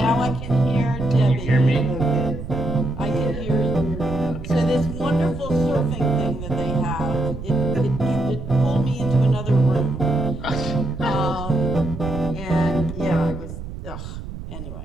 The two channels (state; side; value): noise; right; rumble, 10 dB below the sound